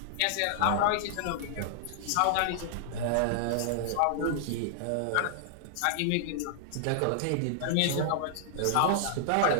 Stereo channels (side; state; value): both; different; correlation -0.01